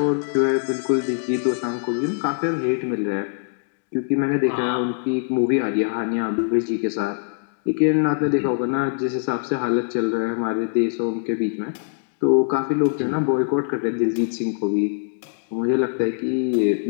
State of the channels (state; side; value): silent; right; digital silence